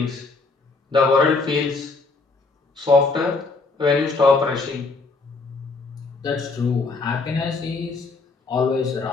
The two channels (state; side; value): quieter; right; 3.9 dB